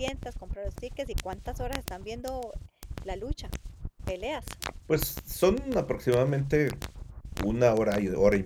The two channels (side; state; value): both; identical; correlation 1.00